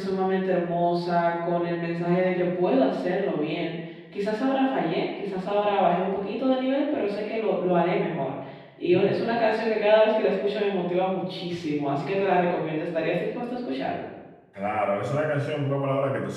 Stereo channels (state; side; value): identical; both; correlation 1.00